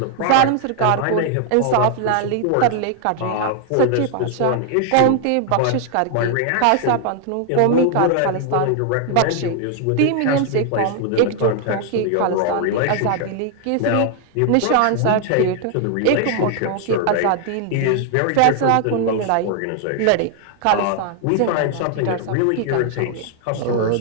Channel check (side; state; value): both; different; correlation 0.00